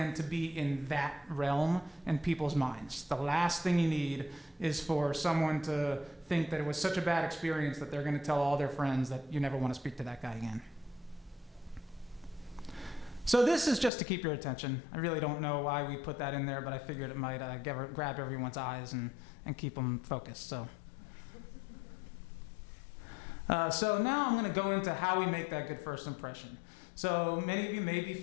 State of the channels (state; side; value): drops out; right; at 13.9 s